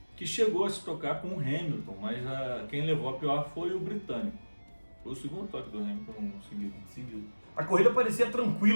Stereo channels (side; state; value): both; inverted; correlation -1.00